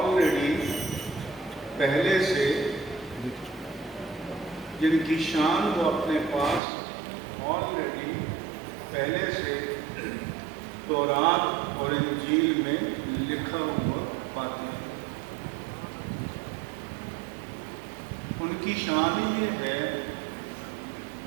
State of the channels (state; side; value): drops out; left; at 6.6 s